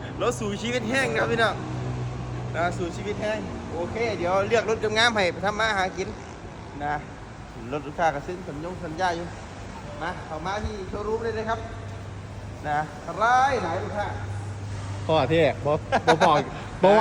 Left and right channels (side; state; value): both; identical; correlation 1.00